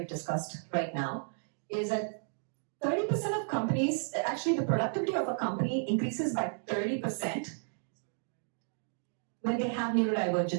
discussed right now, is that 30% of companies, actually the productivity of a company increases by 30% when they have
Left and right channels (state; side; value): silent; left; digital silence